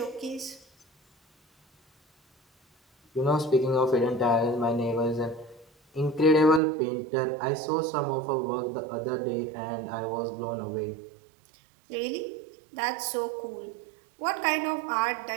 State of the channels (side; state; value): left; drops out; at 6.6 s